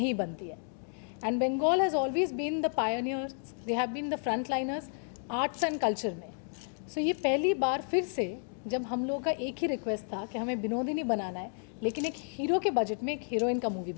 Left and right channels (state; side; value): silent; right; 57 dB below the other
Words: बनती है। And Bengal has always been the pioneers, they have been the front liners arts and culture में। सो ये पहली बार फिर से जब हम लोगों का एक ही रिक्वेस्ट था कि हमें बिनोदिनी बनाना है, लेकिन एक हीरो के बजट में एक हीरोइन का मूवी